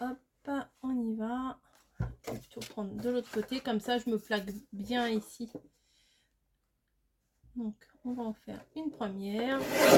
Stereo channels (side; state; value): both; identical; correlation 1.00